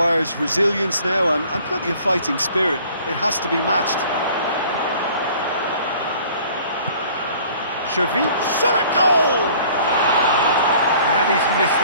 resilience now and plenty of fighting spirit. It has to be matched. Xavi, shot at goal! And he's missed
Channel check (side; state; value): both; inverted; correlation -0.52